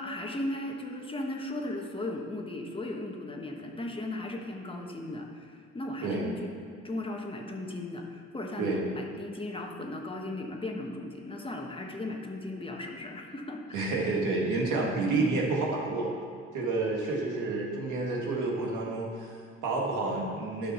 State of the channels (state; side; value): normal; both; correlation 0.43